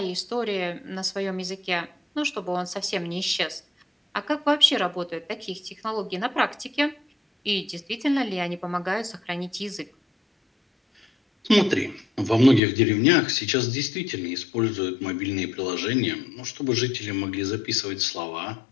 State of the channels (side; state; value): right; drops out; at 12.6 s